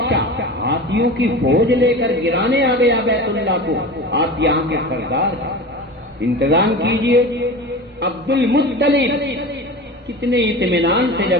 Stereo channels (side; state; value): both; normal; correlation 0.32